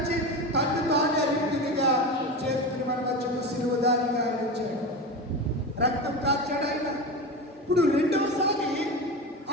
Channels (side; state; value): both; normal; correlation 0.23